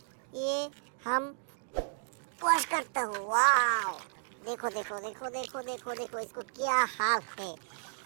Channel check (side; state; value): left; silent; digital silence